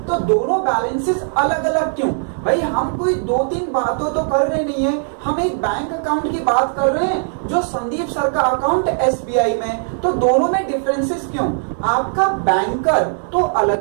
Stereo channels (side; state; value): left; silent; digital silence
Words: तो दोनों बैलेंसेस अलग अलग क्यों? भाई हम कोई 2-3 बातों तो कर रहे नहीं है, हम एक बैंक अकाउंट की बात कर रहे हैं जो संदीप सर का अकाउंट एसबीआई में, तो दोनों में डिफरेंसेस क्यों? आपका बैंकर तो